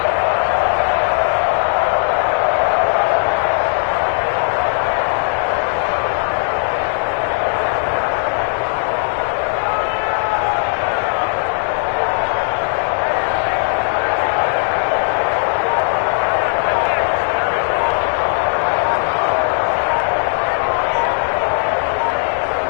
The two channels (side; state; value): right; silent; 61 dB below the other